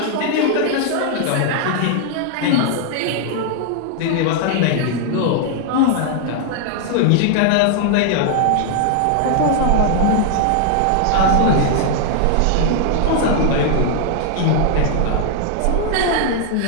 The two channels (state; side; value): different; both; correlation 0.00